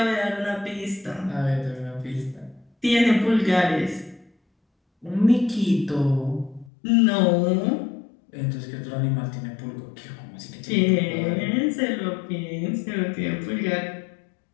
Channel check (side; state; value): right; drops out; at 6.7 s